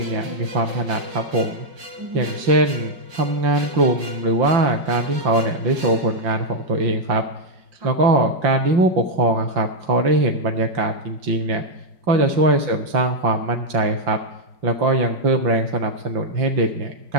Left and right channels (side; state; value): left; late; 5.4 ms